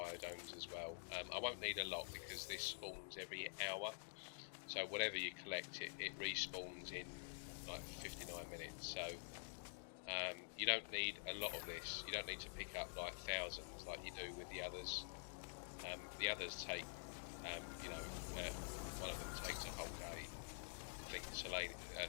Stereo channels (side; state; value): right; silent; digital silence